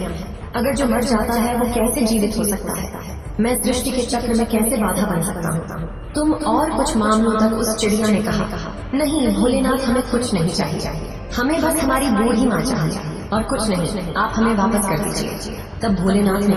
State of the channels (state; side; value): identical; both; correlation 1.00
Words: अगर जो मर जाता है वो कैसे जीवित हो सकता है? मैं सृष्टि के चक्र में कैसे बाधा बन सकता हूँ? तुम और कुछ मामलों तक उस चिड़िया ने कहा, नहीं भोलेनाथ, हमें कुछ नहीं चाहिए, हमें बस हमारी बूढ़ी माँ चाहिए और कुछ नहीं, आप हमें वापस कर दीजिए। तब भोलेनाथ ने